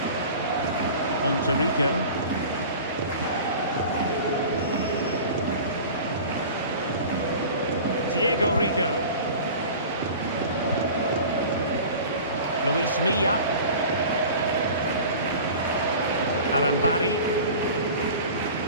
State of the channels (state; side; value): inverted; both; correlation -0.39